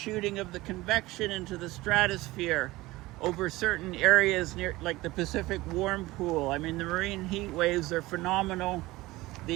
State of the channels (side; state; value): left; quieter; 19.3 dB